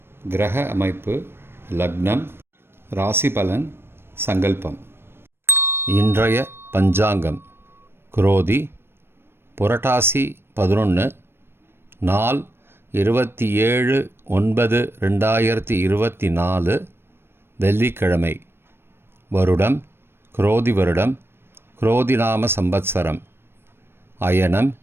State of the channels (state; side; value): late; left; 0.11 ms